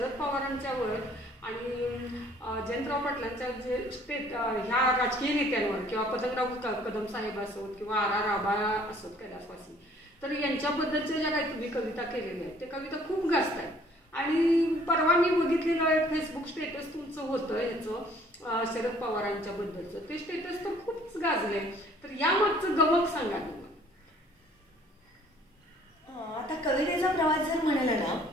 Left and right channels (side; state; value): both; normal; correlation 0.57